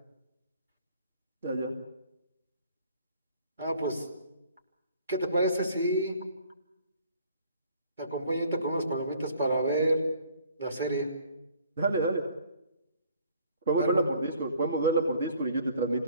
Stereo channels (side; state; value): both; inverted; correlation -0.56